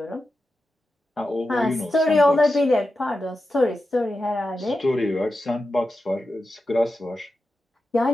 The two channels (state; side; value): normal; both; correlation 0.91